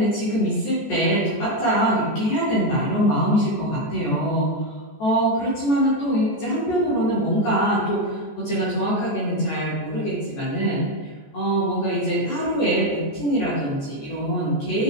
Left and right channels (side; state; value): right; late; 14 ms